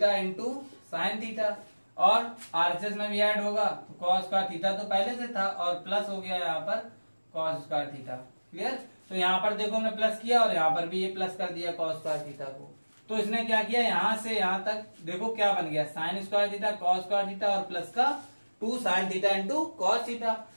into sine theta, और RHS में भी ऐड होगा, तो कॉस स्क्वायर थीटा तो पहले से था और प्लस हो गया यहाँ पर कॉस स्क्वायर थीटा। क्लियर, तो यहाँ पर देखो हमने प्लस किया और यहाँ पर भी ये प्लस कर दिया कॉस स्क्वायर थीटा को। तो इसने क्या किया, यहाँ से यहाँ तक देखो क्या बन गया, sign square theta cos square theta और प्लस का 2 sine theta into cos theta.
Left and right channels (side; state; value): both; inverted; correlation -1.00